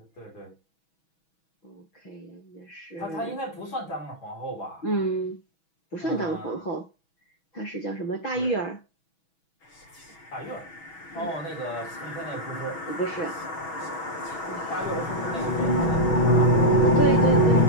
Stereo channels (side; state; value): right; late; 6.2 ms